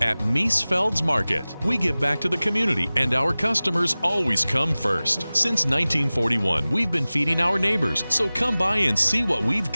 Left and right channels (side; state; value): both; inverted; correlation -0.98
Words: At Miesfeld's Market, we give back to the community, and our customers always come first. Since 1941, we've been feeding our neighbors, so come by and see what we've